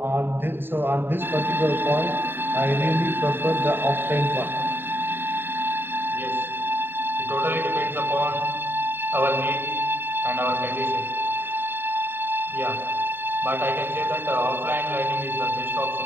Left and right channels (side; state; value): left; late; 0.10 ms